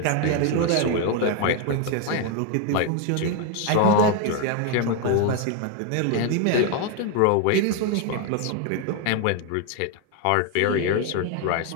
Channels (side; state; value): both; different; correlation 0.01